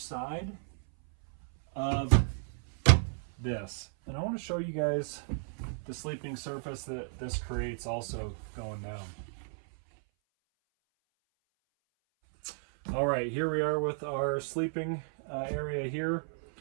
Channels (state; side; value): silent; left; 55 dB below the other